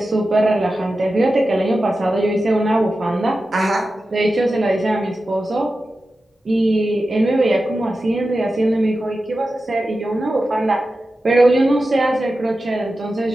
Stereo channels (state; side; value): normal; both; correlation 0.92